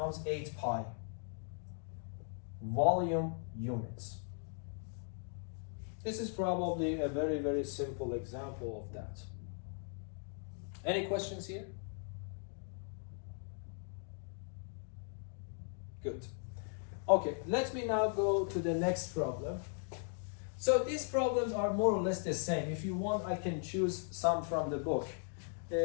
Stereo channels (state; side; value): silent; right; 52 dB below the other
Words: 8 pi. Volume units. This is probably a very, very simple example of that. Any questions here? Good. Okay, let me now go to the next problem. So these problems are more or less the same. If you want, I can choose some from the book.